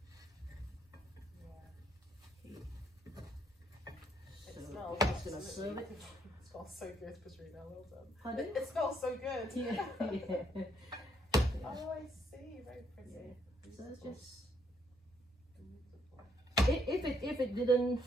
It So smells I'm just gonna serve it. It smells so good, Petrina. Well done. Pardon? It smells so good. Yeah, yeah. Oh, I see. Very pretty. So it's just if it didn't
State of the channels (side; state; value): both; normal; correlation 0.71